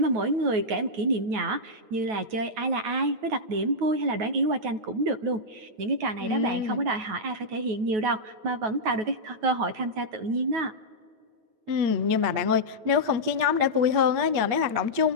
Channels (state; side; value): late; left; 9.3 ms